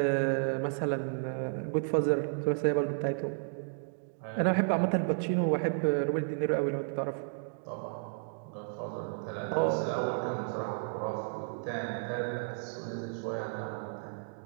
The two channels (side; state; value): left; silent; digital silence